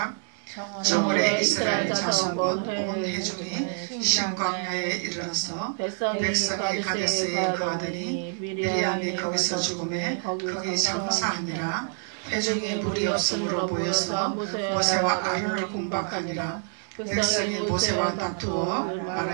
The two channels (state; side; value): silent; left; 60 dB below the other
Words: 저물에 이스라엘 자손 곧 온 회중이 신광야에 이르러서 백성이 가데스에 거하더니 미리암이 거기서 죽음에 거기 장사하니라. 회중이 물이 없음으로 모여서 모세와 아론을 공박하니라. 백성이 모세와 다투어